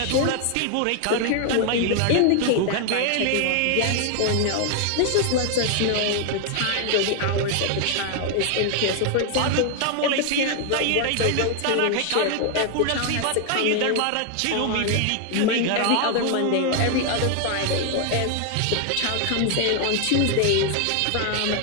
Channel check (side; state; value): both; different; correlation 0.00